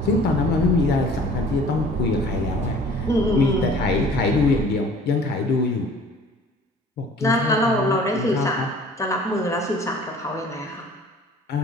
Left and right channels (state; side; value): normal; both; correlation 0.49